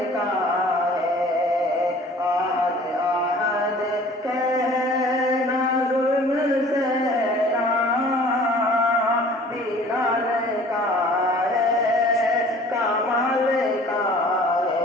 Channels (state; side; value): normal; both; correlation 0.49